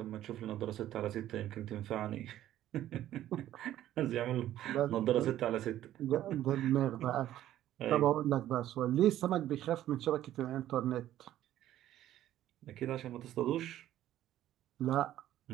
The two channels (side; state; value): left; quieter; 12.9 dB